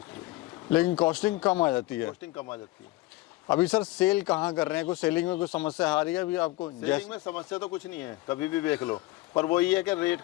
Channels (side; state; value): right; quieter; 19.4 dB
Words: के। लेकिन कॉस्टिंग कम आ जाती है। कॉस्टिंग कम आ जाती है। अभी सर सेल कहाँ कर रहे हैं, कुछ सेलिंग में कुछ समस्या आ रही है अभी आपको? सेलिंग में समस्या तो कुछ नहीं है, कभी भी देख लो, पर वही है कि रेट